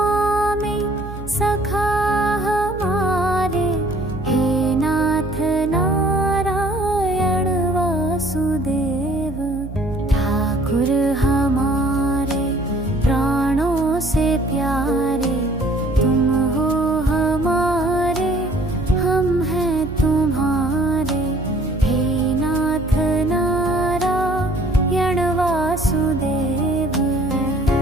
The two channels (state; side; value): noise; right; hum, 11 dB below the sound